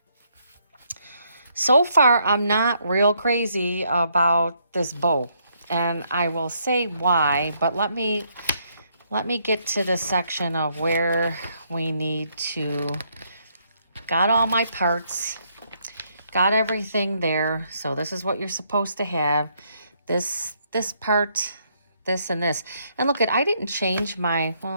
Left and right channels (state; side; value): inverted; both; correlation -0.73